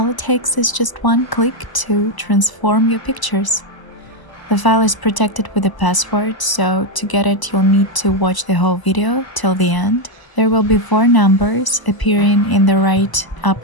it takes is just one click to transform your pictures. The file is protected with a password, so to get it you'll need to watch the whole video till the end. There will be 4 numbers appearing in the right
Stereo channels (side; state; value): right; late; 1.0 ms